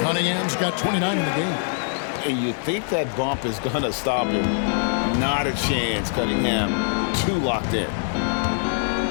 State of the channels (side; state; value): right; silent; digital silence